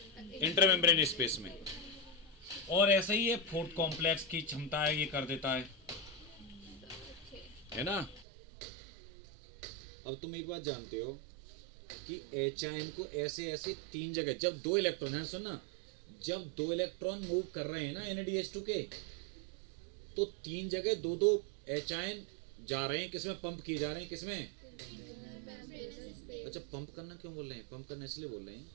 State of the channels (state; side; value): drops out; left; at 8.2 s